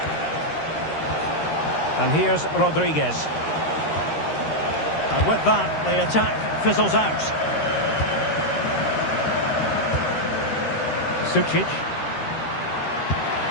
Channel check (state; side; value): late; right; 13 ms